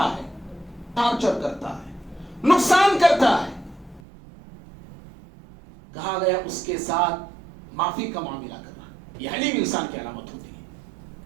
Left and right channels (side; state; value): left; drops out; at 4.0 s